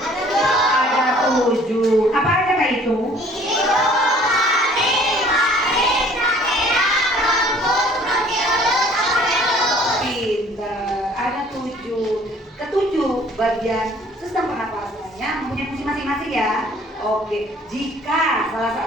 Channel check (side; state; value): both; normal; correlation 0.55